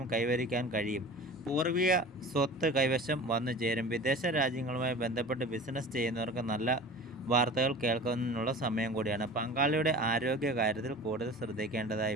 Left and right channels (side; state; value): both; normal; correlation 0.38